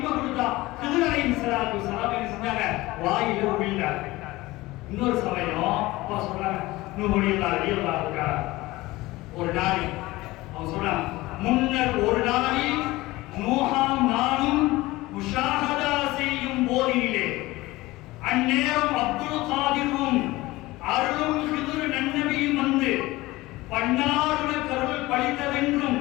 கொடுத்தா. ஹிதர் அலைஹிஸ்ஸலாத்து வஸலாம் என்ன செஞ்சாங்க? வாயில உமிழ்ந்தார்கள். இன்னொரு சமயம் அப்பா சொல்றாங்க, நூஹுல்லாஹ் ரலியல்லாஹு தஆலா ஒரு நாள் அவங்க சொல்றாங்க, முன்னர் ஒரு நாளில் நூஹாம் நானும் முஷாஹதா செய்யும் போதினிலே அந்நேரம் அப்துல் காதிரும் அருளும் ஹிதுர் நன்னபியும் வந்து பன்னாருட கருள் பழித்ததென்றும்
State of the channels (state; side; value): quieter; right; 19.5 dB